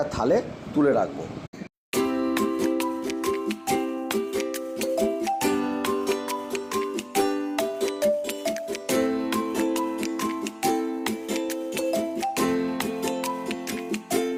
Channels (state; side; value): identical; both; correlation 1.00